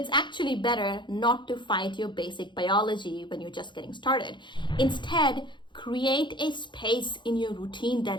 actually better not to fight your basic biology when you're just getting started. Instead, create a space in your routine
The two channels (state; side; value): late; right; 0.23 ms